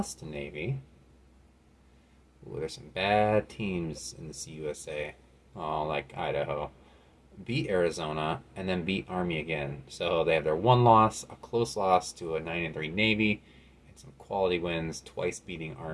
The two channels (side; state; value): both; identical; correlation 1.00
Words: to Navy. Ooh, there's some bad teams in the CUSA. Oh, like Idaho. Beat Arizona and then beat Army again. So they have their one loss, a close loss to a 9-3 Navy, and some quality wins, twice beating